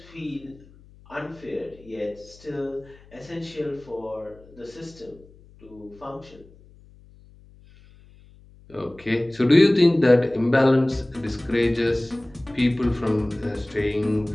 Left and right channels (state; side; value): noise; left; hum, 25 dB below the sound